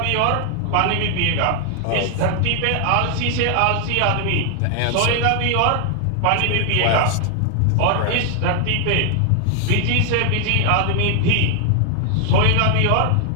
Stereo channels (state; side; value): different; both; correlation 0.00